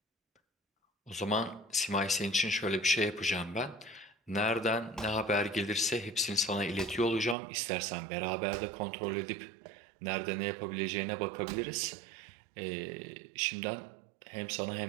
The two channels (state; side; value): drops out; left; at 7.4 s